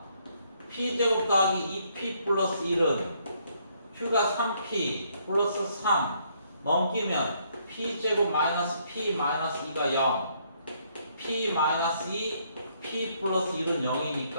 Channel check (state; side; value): inverted; both; correlation -0.70